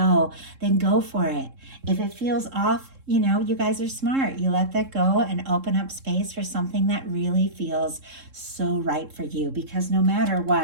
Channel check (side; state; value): left; late; 3.7 ms